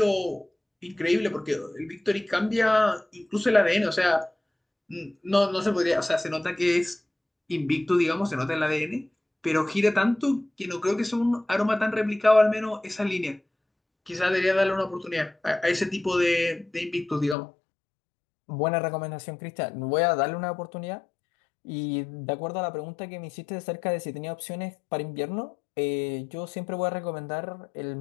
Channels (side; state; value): right; drops out; at 17.4 s